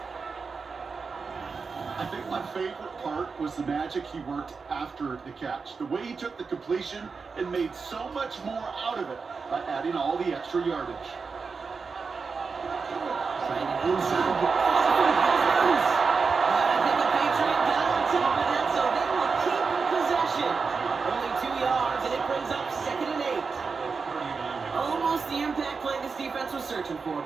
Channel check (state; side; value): quieter; left; 4.9 dB